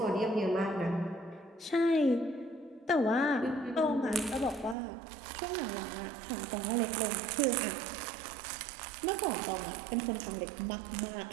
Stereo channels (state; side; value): drops out; left; at 4.8 s